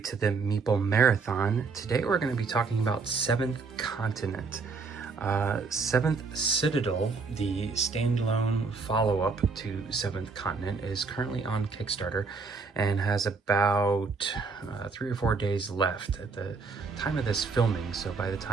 to the Meeple Marathon. Today we're going to be talking about Seventh Continent. Seventh Citadel, the standalone follow-up to Seventh Continent, is currently on Kickstarter and has about 3 or 4 days left at the time of this filming. So by the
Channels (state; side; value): quieter; left; 4.6 dB